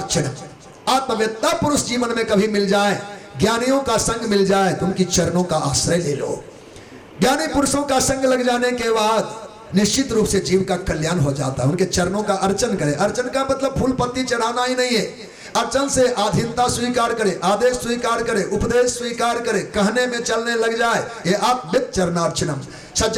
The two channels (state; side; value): identical; both; correlation 1.00